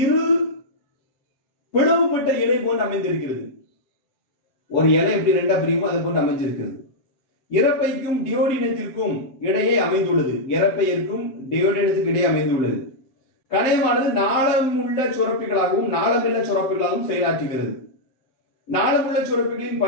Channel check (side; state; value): right; late; 7.6 ms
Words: இரு பிளவுபட்ட இலை போன்று அமைந்திருக்கிறது. ஒரு இலை எப்படி ரெண்டா பிரியுமோ அதை போன்று அமைஞ்சிருக்கிறது. இறப்பைக்கும் டியோடினத்திற்கும் இடையே அமைந்துள்ளது. இறப்பையிற்கும் டியோடினத்துக்கு இடையே அமைந்துள்ளது. கணையமானது நாளமுள்ள சுரப்பிகளாகவும் நாளமில்ல சுரப்பிகளாகவும் செயலாற்றுகிறது. நாளமுள்ள சுரப்பிகளின்